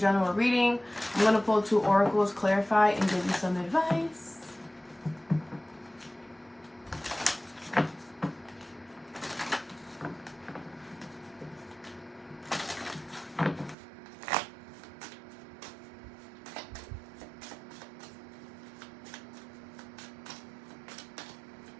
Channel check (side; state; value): left; drops out; at 13.8 s